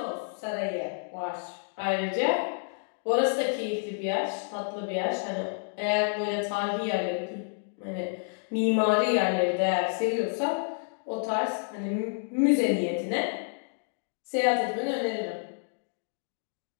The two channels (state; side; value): silent; right; digital silence